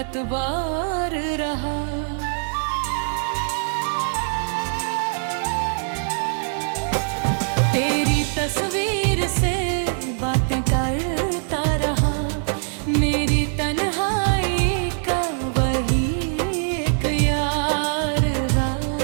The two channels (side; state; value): left; silent; digital silence